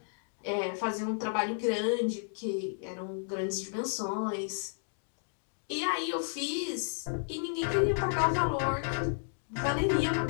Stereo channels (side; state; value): right; silent; digital silence